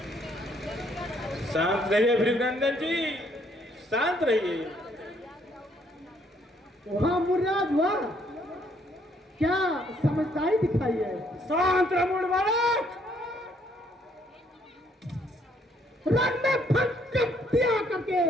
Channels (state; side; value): normal; both; correlation 0.68